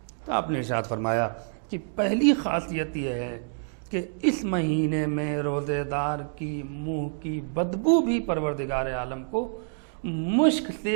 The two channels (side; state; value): left; silent; digital silence